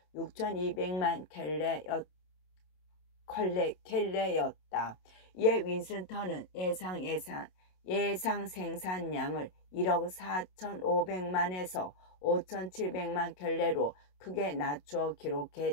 6,200만 켤레였다. 이에 윈스턴은 예상 생산량을 1억 4,500만에서 5,700만 켤레로 크게 낮추어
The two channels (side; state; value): right; late; 27 ms